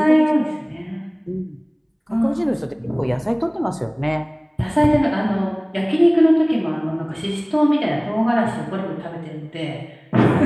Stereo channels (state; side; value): identical; both; correlation 1.00